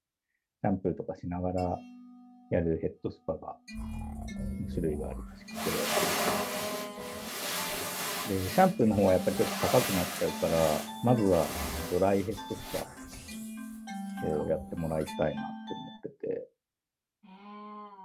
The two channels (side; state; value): both; identical; correlation 1.00